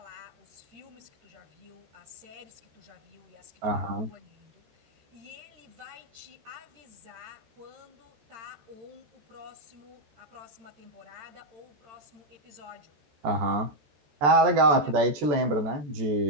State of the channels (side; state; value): left; late; 14 ms